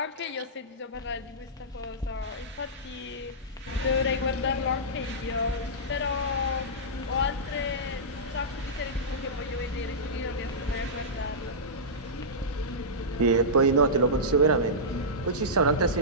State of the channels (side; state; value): both; normal; correlation -0.15